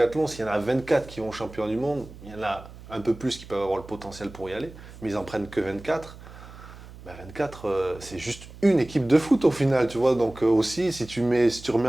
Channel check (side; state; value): right; noise; hum, 17 dB below the sound